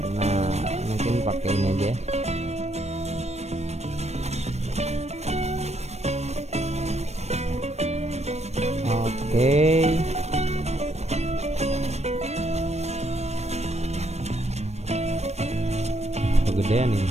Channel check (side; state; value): left; late; 0.31 ms